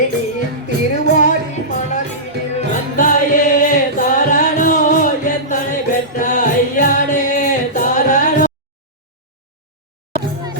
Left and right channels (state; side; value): normal; both; correlation -0.16